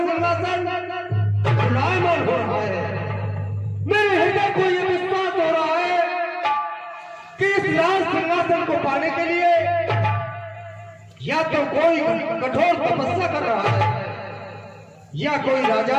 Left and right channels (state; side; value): identical; both; correlation 1.00